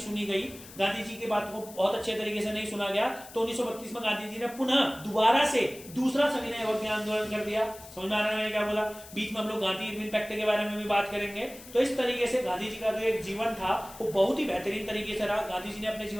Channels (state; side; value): noise; left; hiss, 17 dB below the sound